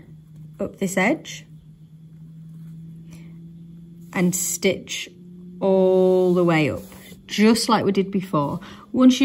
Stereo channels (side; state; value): both; identical; correlation 1.00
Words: up this edge and stitch all the way up, just like we did before. Once